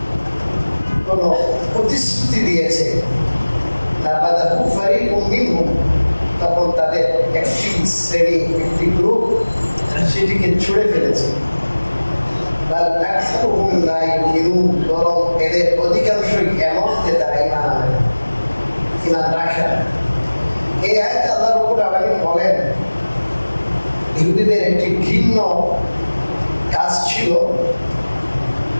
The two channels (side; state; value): both; inverted; correlation -1.00